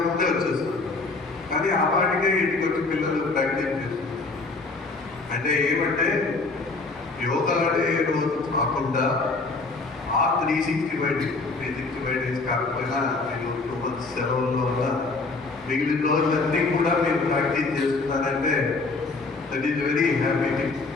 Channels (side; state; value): right; quieter; 3.7 dB